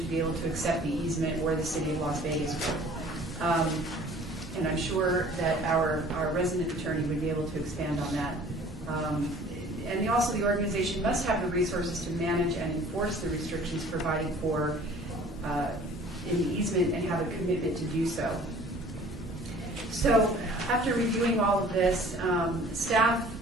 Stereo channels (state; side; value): normal; both; correlation 0.50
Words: be able to accept the easement or the City of Las Vegas would. And I'm sure that our resident attorney would be able to expand on that. And also the organization must have the resources to manage and enforce the restrictions provided for in the easement and have a commitment to do so. So after reviewing all of this, staff